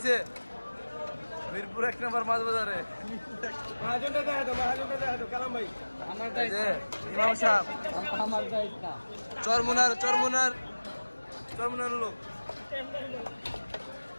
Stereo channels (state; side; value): inverted; both; correlation -1.00